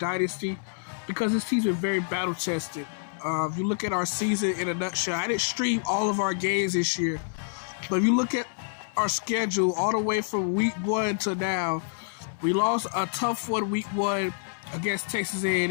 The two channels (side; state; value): right; silent; 60 dB below the other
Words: because this season was very battle-tested. If you look at our season in a nutshell, I didn't stream all of our games this year, but if you look at our schedule all the way from week 1 to now, we lost a tough one week 1 against Texas